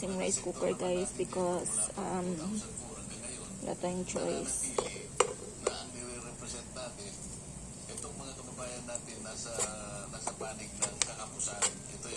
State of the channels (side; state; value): both; identical; correlation 1.00